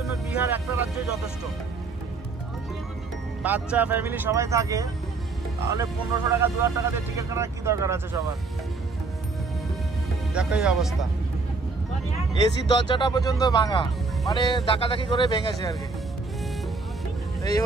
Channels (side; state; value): left; quieter; 4.0 dB